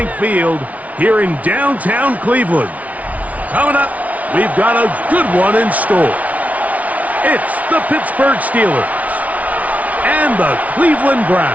Field here in downtown Cleveland. Coming up, we've got a good one in store. It's the Pittsburgh Steelers and the Cleveland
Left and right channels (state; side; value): late; left; 0.069 ms